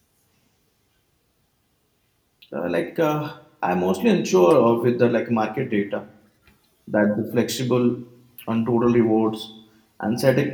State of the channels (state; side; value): identical; both; correlation 1.00